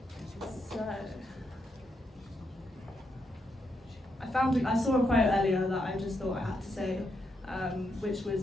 So, I saw a quote earlier that I just thought I had to say, which was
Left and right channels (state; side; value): normal; both; correlation 0.80